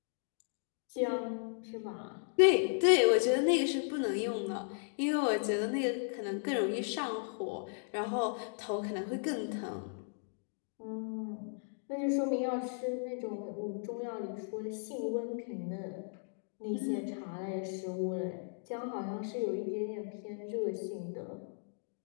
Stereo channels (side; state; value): right; silent; digital silence